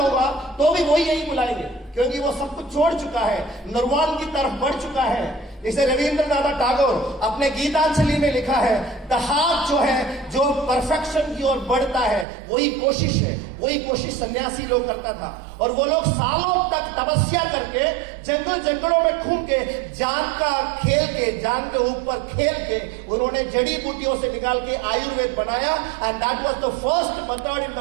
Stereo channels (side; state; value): left; drops out; at 12.2 s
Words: तो भी वही यही बुलाएंगे, क्योंकि वो सब कुछ छोड़ चुका है, निर्वाण की तरफ बढ़ चुका है। इसे रविंद्रनाथ टैगोर अपने गीतांजलि में लिखा है, द हार्ट जो है, जो परफेक्शन की ओर बढ़ता है, वही कोशिश है। वही कोशिश सन्यासी लोग करता था। और वो लोग सालों तक तपस्या करके जंगलों में घूम के जान का खेल के, जान के ऊपर खेल के उन्होंने जड़ी बूटियों से निकाल के आयुर्वेद बनाया। And that was the first method in